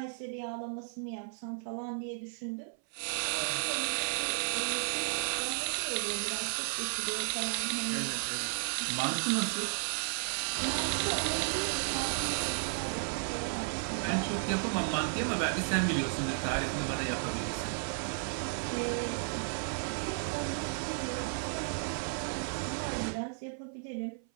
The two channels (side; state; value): left; silent; 55 dB below the other